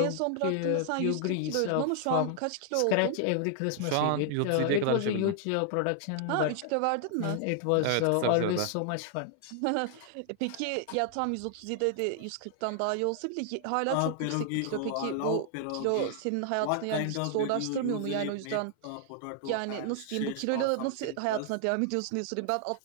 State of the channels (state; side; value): different; both; correlation 0.00